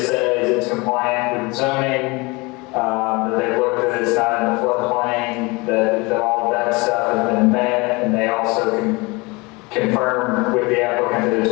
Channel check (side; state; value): right; quieter; 25.7 dB